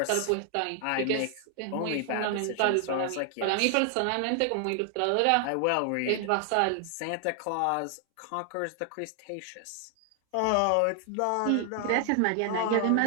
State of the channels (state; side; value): different; both; correlation 0.00